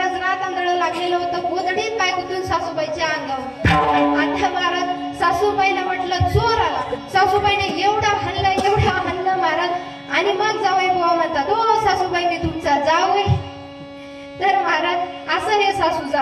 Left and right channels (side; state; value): both; identical; correlation 1.00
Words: रात आंधळ लागलेलं होतं. गोधडीत पाय गुंतून सासूबाईच्या अंगावर. आता महाराज सासूबाईला म्हटलं चोर आला. सासूबाईने एवढा हल्ला महाराज. आणि मग जावई बुवा म्हणतात ओ सासूबाई मी तुमचा जावई. तर महाराज असं हे सासू